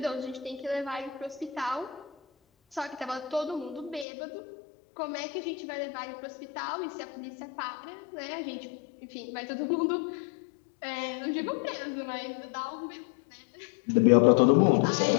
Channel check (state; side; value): drops out; right; at 4.0 s